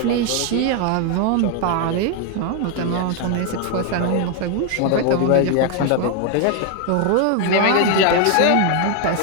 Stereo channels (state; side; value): different; both; correlation 0.00